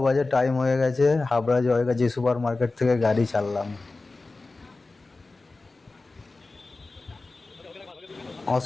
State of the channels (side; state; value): right; quieter; 3.5 dB